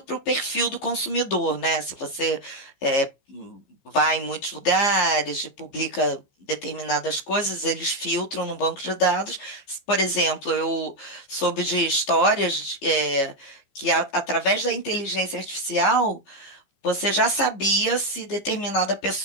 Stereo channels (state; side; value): late; right; 15 ms